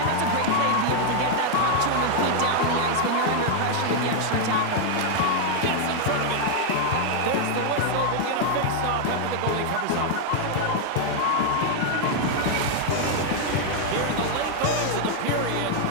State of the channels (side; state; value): both; different; correlation 0.00